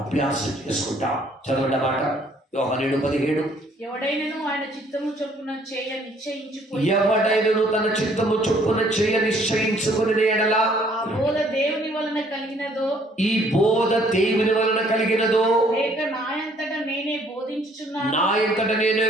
అభ్యాసం చేసుకుంటాం. చదవండి మాట యోహాను 7:17. ఎవడైనను ఆయన చిత్తము చొప్పున చేయ నిశ్చయించుకొని, ఎవడైనను తన చిత్తము చొప్పున చేయ నిశ్చయించుకుని ఎడల ఆ బోధ దేవుని వలన కలిగినదో, ఈ బోధ దేవుని వలన కలిగినదో, లేక నాయంతట నేనే బోధించుచున్నాను, నా ఎంతట నేనే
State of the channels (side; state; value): both; normal; correlation 0.62